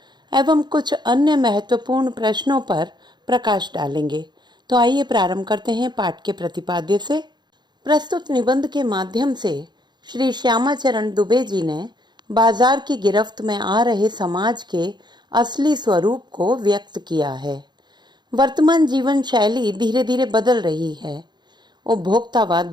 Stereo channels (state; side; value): late; left; 0.21 ms